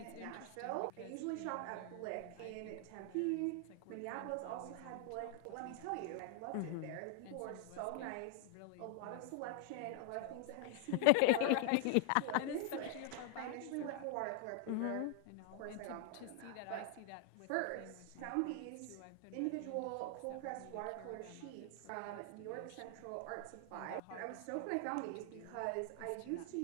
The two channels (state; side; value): different; both; correlation 0.00